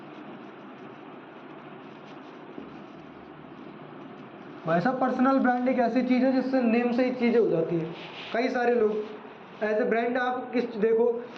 भाई साहब, पर्सनल ब्रांड एक ऐसी चीज़ है जिससे नेम से ही चीज़ें हो जाती हैं। कई सारे लोग एज ए ब्रांड, आप किस देखो,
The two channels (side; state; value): both; identical; correlation 1.00